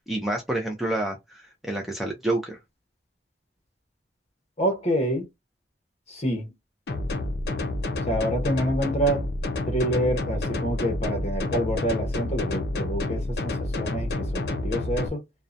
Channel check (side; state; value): both; normal; correlation 0.56